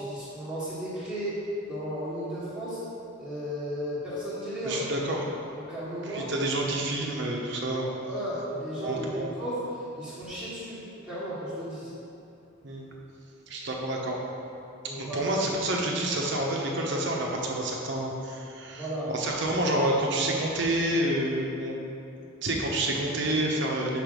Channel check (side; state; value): both; normal; correlation 0.24